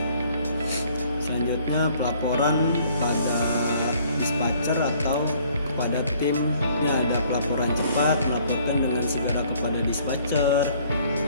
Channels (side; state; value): both; inverted; correlation -0.60